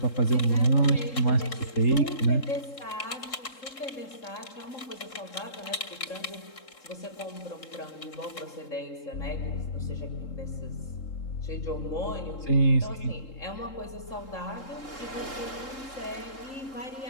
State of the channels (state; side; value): late; right; 3.7 ms